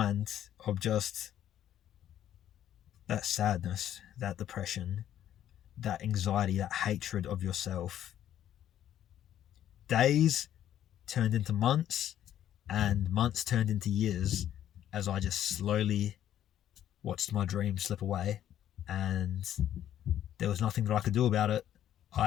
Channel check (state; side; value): quieter; right; 11.2 dB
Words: of just that sadness, that depression, that anxiety, that hatred of yourself, days turned into months and months turned into years as I just slowly watched my dream slip away, and there was nothing that I could do about it.